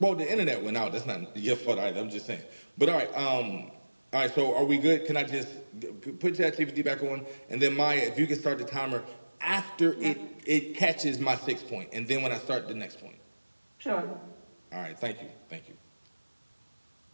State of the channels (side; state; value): both; inverted; correlation -1.00